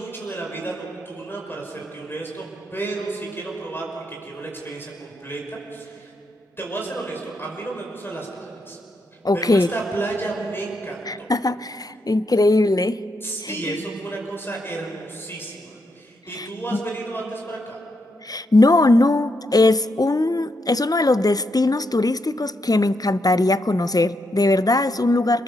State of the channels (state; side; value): normal; both; correlation 0.80